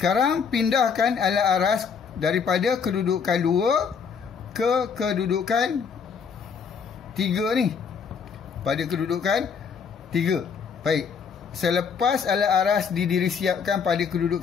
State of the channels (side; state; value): right; quieter; 6.3 dB